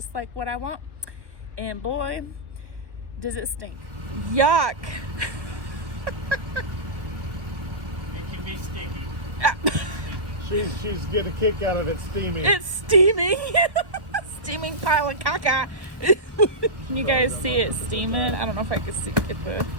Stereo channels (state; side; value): late; left; 1.1 ms